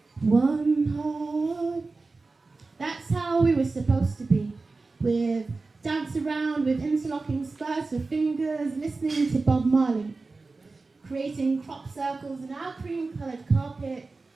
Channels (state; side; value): quieter; left; 3.7 dB